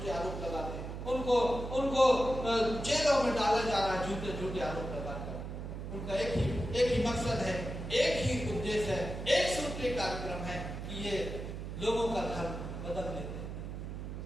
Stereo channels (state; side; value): noise; right; hum, 7 dB below the sound